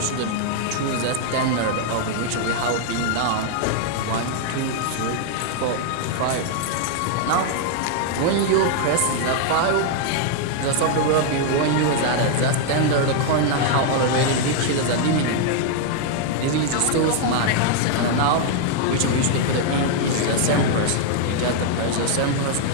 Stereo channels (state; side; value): different; both; correlation 0.00